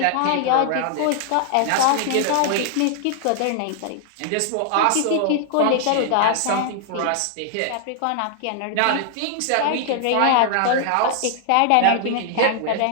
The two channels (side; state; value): both; different; correlation -0.01